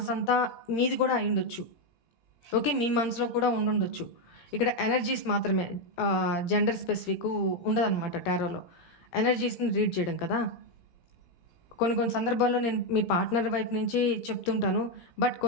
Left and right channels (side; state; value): right; late; 17 ms